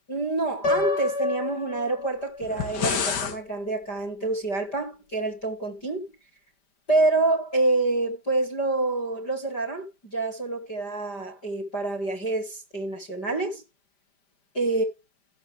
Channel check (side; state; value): right; late; 5.0 ms